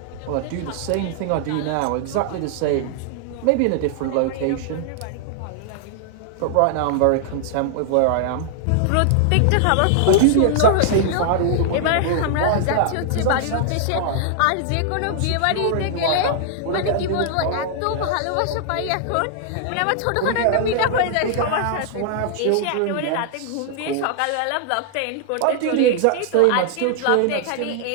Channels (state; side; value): different; both; correlation 0.00